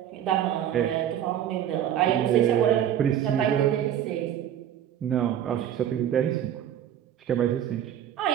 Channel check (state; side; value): quieter; left; 10.5 dB